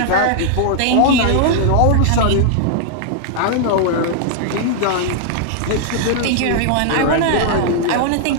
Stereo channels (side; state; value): both; different; correlation -0.01